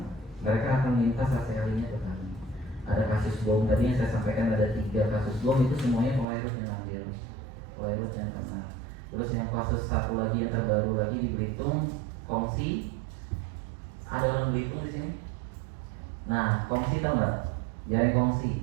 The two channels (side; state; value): left; drops out; at 6.2 s